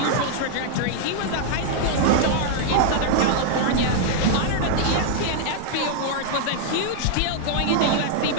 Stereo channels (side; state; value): both; different; correlation -0.01